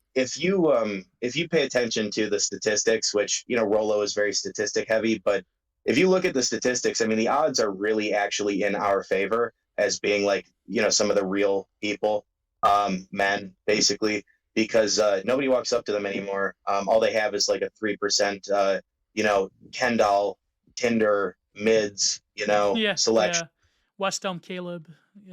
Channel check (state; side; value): identical; both; correlation 1.00